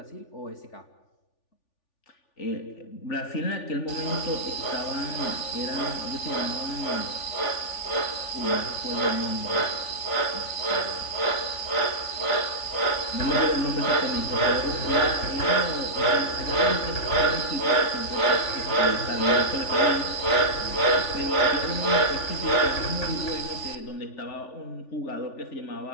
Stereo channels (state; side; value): late; right; 3.4 ms